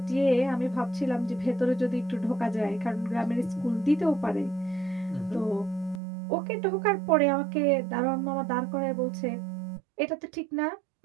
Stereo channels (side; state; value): left; drops out; at 6.0 s